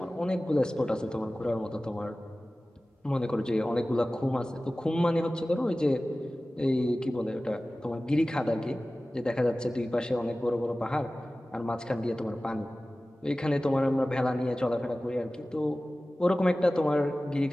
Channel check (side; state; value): both; normal; correlation 0.97